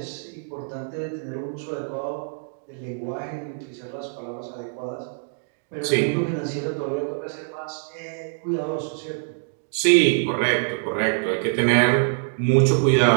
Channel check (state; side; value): silent; left; digital silence